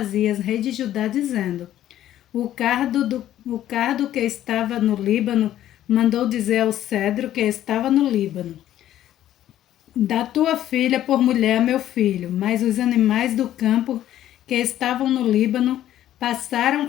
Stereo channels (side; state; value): right; quieter; 12.4 dB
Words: rei de Judá, dizendo: o cardo que estava no Líbano mandou dizer ao cedro que estava no Líbano: dá tua filha por mulher a meu filho. Mas os animais do campo que estavam no Líbano passaram